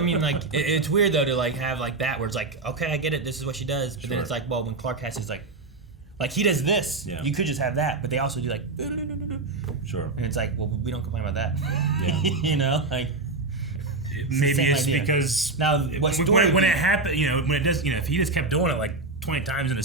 like, it's weird though to like have like that where it's like, okay, I get it, this is what she does. But then it's like, well, when Clark has his like he does this, you could just have that, but they also do like, sure. And it's like, well, we don't complain about that. Yeah. You know, like. Maybe it's because now when it happened, you know, when it does, you know, if he just kept doing it like 20 times in a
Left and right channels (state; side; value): quieter; left; 3.5 dB